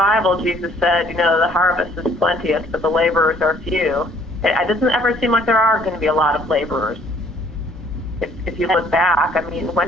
Jesus said, the harvest is plenteous, but the laborers are few. It doesn't ever seem like there are going to be a lot of laborers. If you look back,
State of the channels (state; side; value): normal; both; correlation 0.59